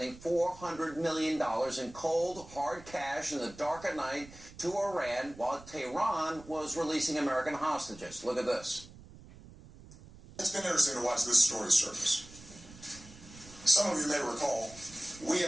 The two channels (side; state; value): right; noise; rumble, 19 dB below the sound